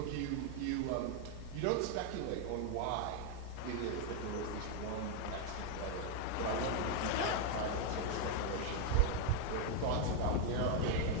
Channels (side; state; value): both; different; correlation 0.00